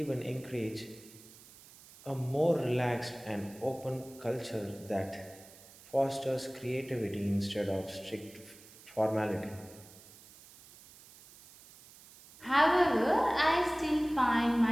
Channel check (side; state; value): right; noise; hiss, 21 dB below the sound